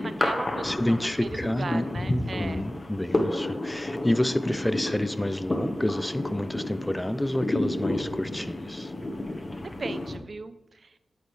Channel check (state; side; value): normal; both; correlation 0.97